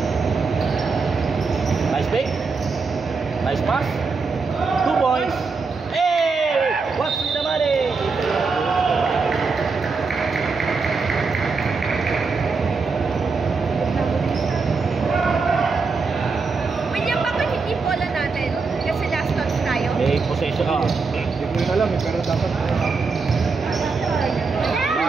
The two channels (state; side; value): quieter; left; 4.5 dB